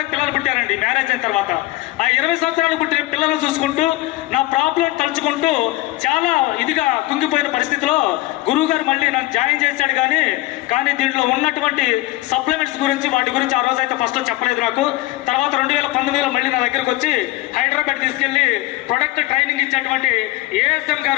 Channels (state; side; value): quieter; right; 18.8 dB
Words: పిల్లలు పుట్టారండి మ్యారేజ్ అయిన తర్వాత. ఆ 20 సంవత్సరాలకు పుట్టిన పిల్లలు చూసుకుంటూ నా ప్రాబ్లం తలుచుకుంటూ చాలా ఇదిగా కుంగిపోయిన పరిస్థితిలో గురువు గారు మళ్ళీ నన్ను జాయిన్ చేశాడు. కానీ దీంట్లో ఉన్నటువంటి సప్లిమెంట్స్ గురించి వాటి గురించి ఆ రోజు అయితే ఫస్ట్లో చెప్పలేదు నాకు. తర్వాత 2019లో మళ్ళీ నా దగ్గరకు వచ్చి హైదరాబాద్ తీసుకెళ్లి ప్రొడక్ట్ ట్రైనింగ్ ఇచ్చేటువంటి ASM